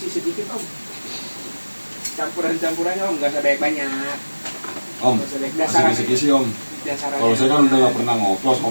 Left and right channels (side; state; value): both; inverted; correlation -1.00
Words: sedikit Om. Campuran-campurannya Om, nggak usah banyak-banyak. Om, Nggak usah banyak. kasih Dasarannya. kisi-kisi Om. Dasarannya. Kalau saya kan udah gak pernah ngoplos,